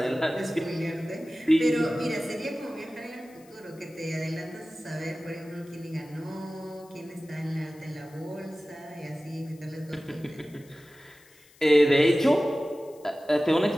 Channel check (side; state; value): left; noise; hiss, 27 dB below the sound